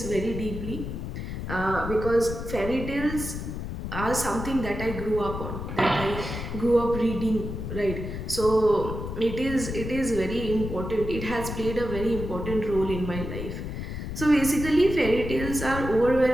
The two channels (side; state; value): left; noise; rumble, 6 dB below the sound